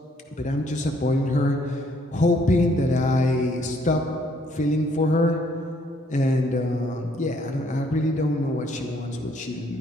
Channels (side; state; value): both; normal; correlation 0.66